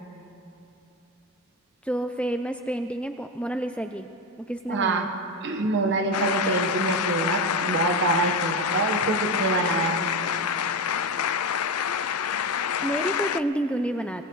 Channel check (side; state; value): both; normal; correlation 0.18